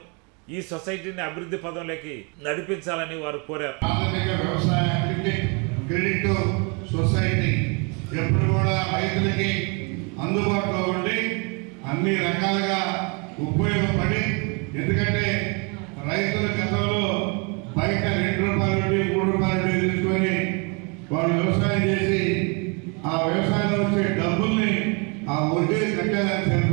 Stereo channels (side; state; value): left; quieter; 32.8 dB